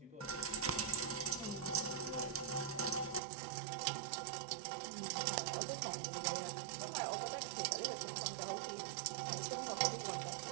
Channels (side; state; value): left; drops out; at 3.2 s